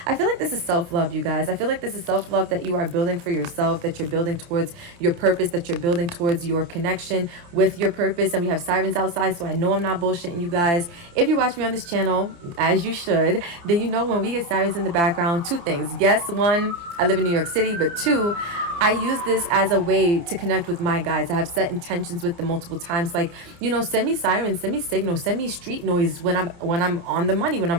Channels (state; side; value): late; left; 29 ms